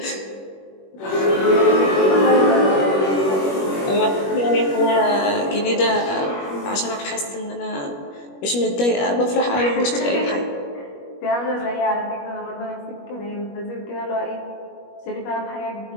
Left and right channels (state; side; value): late; right; 21 ms